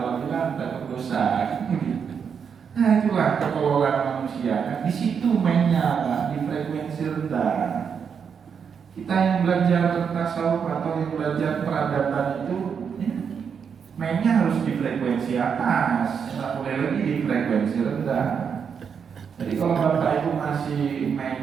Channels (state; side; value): quieter; left; 6.8 dB